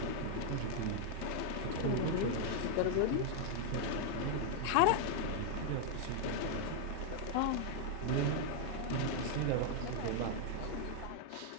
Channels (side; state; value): both; different; correlation 0.00